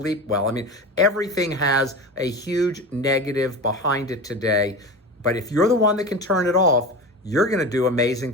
well. I mean, everything has a huge negative behind it today. But if you're the one that can turn it off, you're going to do amazing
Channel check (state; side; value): normal; both; correlation 0.28